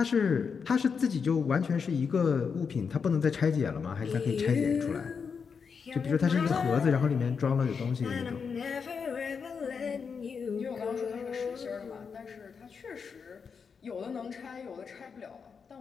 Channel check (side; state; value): right; quieter; 5.9 dB